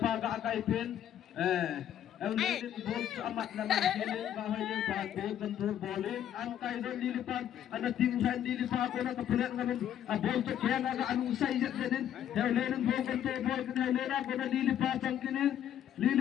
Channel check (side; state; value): right; quieter; 10.4 dB